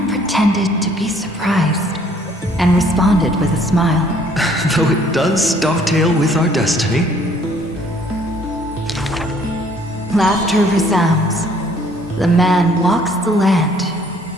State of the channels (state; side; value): normal; both; correlation 0.60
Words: pretended to be surprised and responded with a smile. Though it does dovetail with our destiny. Laughter resounds. The man walks the land,